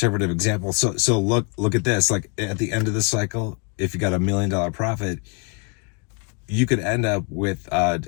example. So look at this. Like at the end of the cycle, if you got $1 million profit, you could end up with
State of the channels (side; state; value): right; quieter; 34.5 dB